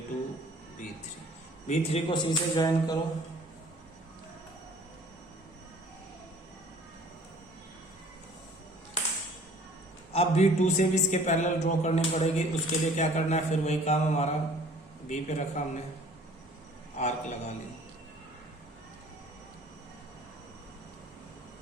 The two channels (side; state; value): both; normal; correlation 0.52